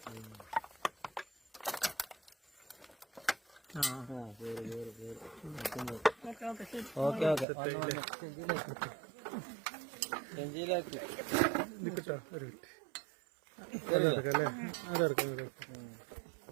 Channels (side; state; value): left; drops out; at 7.5 s